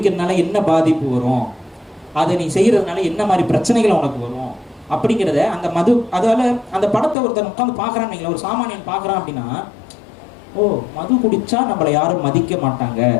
என்ன பாதிப்பு வரும், அதை நீ செய்யறதுனால என்ன மாதிரி பிரச்சனைகள் உனக்கு வரும் அப்படிங்கிறத அந்த மது, அதால அந்த படத்தை ஒருத்தர் உட்காந்து பார்க்கறான்னு, ஒரு சாமானியன் பார்க்கறான் அப்படின்னா, ஓ மது குடிச்சா நம்மளை யாரும் மதிக்க மாட்டாங்க,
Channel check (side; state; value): right; drops out; at 7.2 s